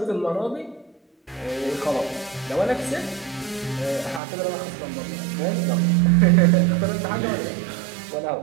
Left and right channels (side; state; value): left; drops out; at 4.2 s